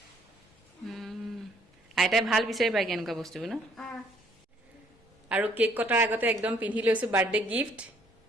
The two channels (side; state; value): both; normal; correlation 0.64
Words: আইতাই ভাল বিচাৰি পায় কেনেকুৱা বস্তুবোৰ ন আৰু কেক কটাৰ আগতে একদম পিন্ধি লৈছো বাৰ্থডে গিফ্ট